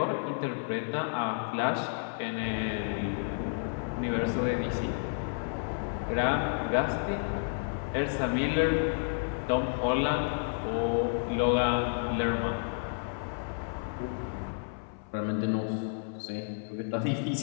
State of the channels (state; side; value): silent; right; 57 dB below the other